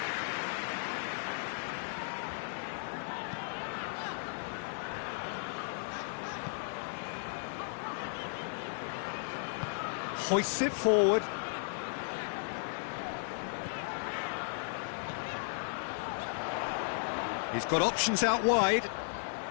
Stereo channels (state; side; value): silent; right; digital silence